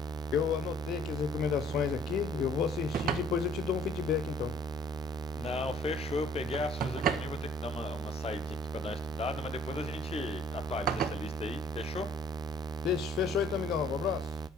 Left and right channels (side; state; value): both; normal; correlation 0.58